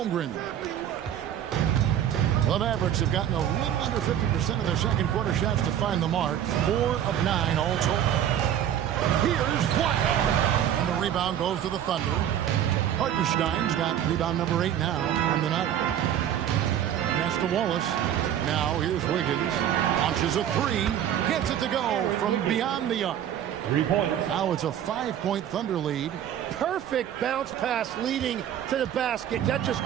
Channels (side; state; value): left; quieter; 10.3 dB